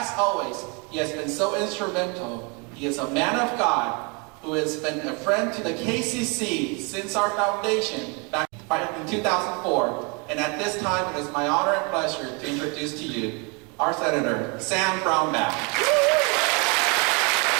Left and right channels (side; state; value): left; quieter; 32.2 dB